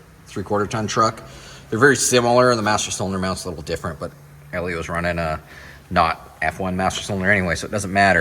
3/4 ton truck. They're very similar. The master cylinder mount's a little different, but Elio's running a not F1 master cylinder anyway, so it doesn't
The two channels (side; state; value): both; identical; correlation 1.00